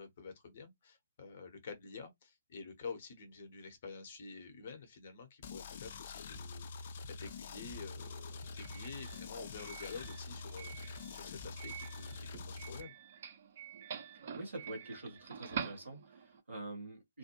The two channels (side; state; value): both; inverted; correlation -0.66